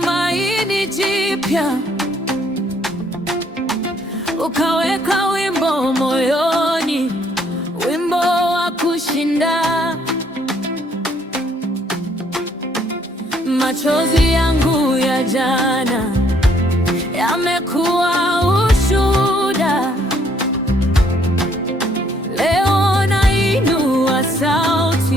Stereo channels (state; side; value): normal; both; correlation 0.66